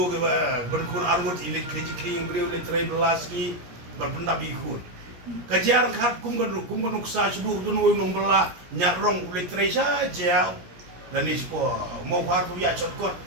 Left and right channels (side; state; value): left; late; 17 ms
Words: ke ba berkun arwot ile kili cikling budi le trai belaski berpendap ikut kajar khat kum kan uksa sudu dun wo mong bela nyarong le trai saja dan ispo mo khar tu ya chotkot